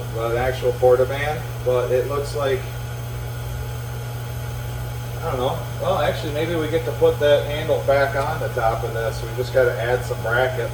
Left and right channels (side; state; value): both; identical; correlation 1.00